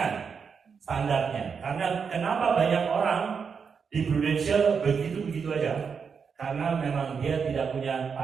standarnya. Karena kenapa banyak orang di Prudential begitu aja? Karena memang dia tidak punya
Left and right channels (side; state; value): left; quieter; 6.1 dB